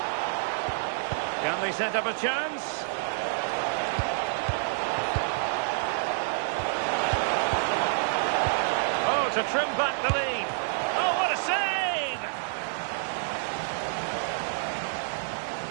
Can they set up a chance? Oh, to trim back the lead. Oh, what a save!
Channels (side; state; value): left; silent; digital silence